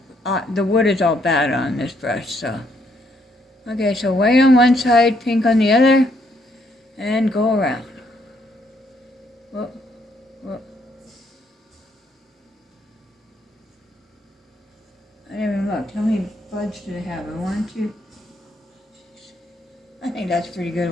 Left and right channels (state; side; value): normal; both; correlation 0.71